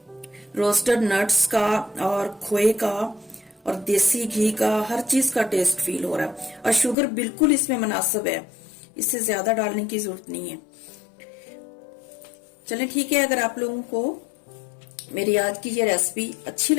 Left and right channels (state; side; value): drops out; right; at 7.0 s